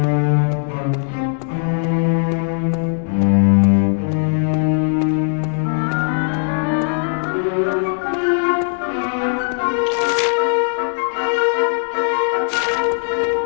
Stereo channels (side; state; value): right; silent; digital silence